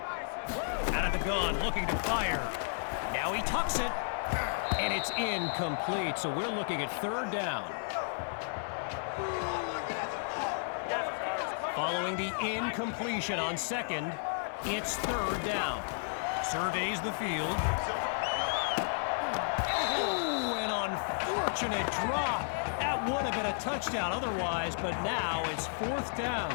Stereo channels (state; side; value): silent; right; 56 dB below the other